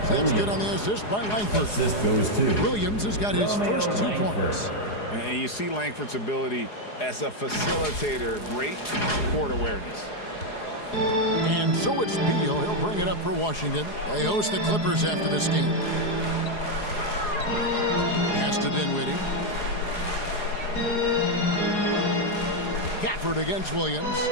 That's good on the assist by Langford. Assist goes to Williams has got his first 2 points. And you see Langford's ability as a facilitator. Great court awareness. And so it's Beal. He'll bring it up for Washington. They host the Clippers after this game. Pass to Dinwiddie. Gafford against Williams.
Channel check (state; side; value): late; right; 4.8 ms